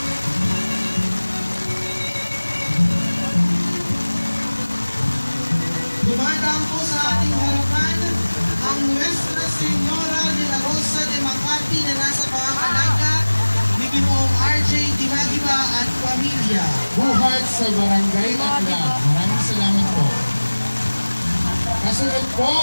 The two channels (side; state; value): both; inverted; correlation -1.00